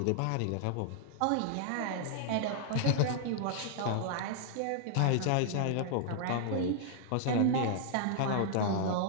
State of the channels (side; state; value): both; different; correlation -0.01